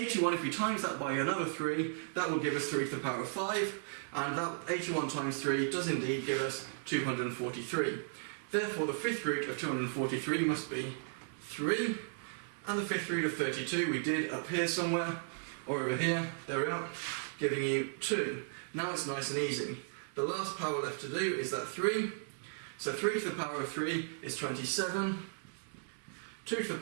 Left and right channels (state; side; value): silent; left; digital silence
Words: if we times that by another 3, that will give us 3 to the power of 5, and that 81 times 3 does indeed give us 243. Therefore the 5th root of 243 must be 3. And the fifth root of 32 we did up here somewhere, or over here, there we are, giving you 2. Now it's nice and easy. The last power left to do is that 3. So 3 to the power of 3 is 27. 2 to the